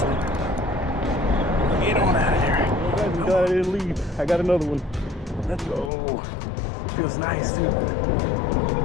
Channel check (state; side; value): drops out; right; at 5.9 s